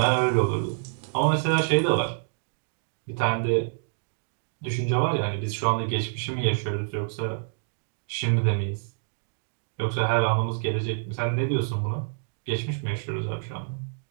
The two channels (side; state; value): left; silent; digital silence